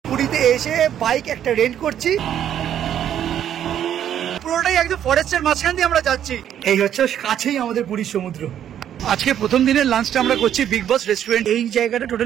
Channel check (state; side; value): quieter; left; 10.2 dB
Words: পুরীতে এসে বাইক একটা রেন্ট করছি, পুরোটাই একদম ফরেস্টের মাঝখান দিয়ে আমরা যাচ্ছি। এই হচ্ছে কাছেই আমাদের পুরীর সমুদ্র। আজকে প্রথম দিনের লাঞ্চটা আমরা করছি বিগ বস রেস্টুরেন্ট। এই জায়গাটা